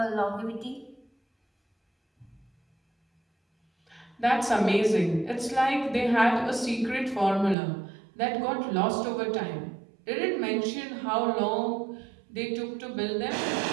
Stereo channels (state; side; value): drops out; left; at 7.6 s